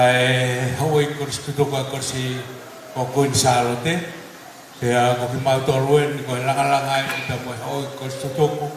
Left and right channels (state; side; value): identical; both; correlation 1.00